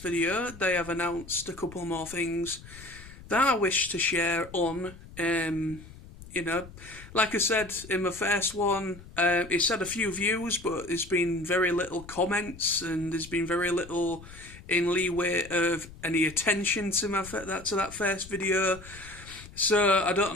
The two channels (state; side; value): noise; left; rumble, 17 dB below the sound